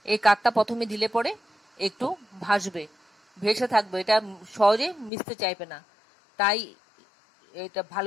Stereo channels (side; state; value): right; drops out; at 5.1 s